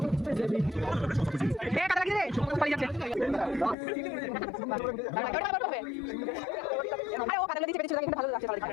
কাটা লাগছে রে পালিয়ে যাচ্ছে আরে ও কাটা দিচ্ছে পেছনে চলে কিন্তু ভালো লাগছে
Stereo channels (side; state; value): right; drops out; at 3.8 s